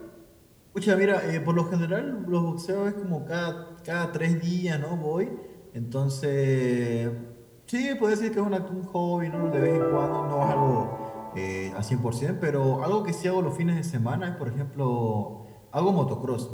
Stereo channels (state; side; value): identical; both; correlation 1.00